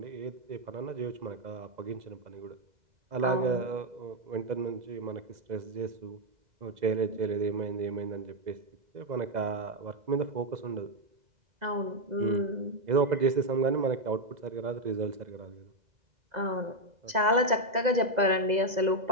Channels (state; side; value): late; left; 2.0 ms